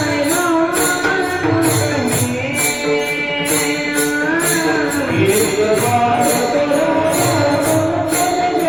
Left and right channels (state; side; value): noise; left; rumble, 26 dB below the sound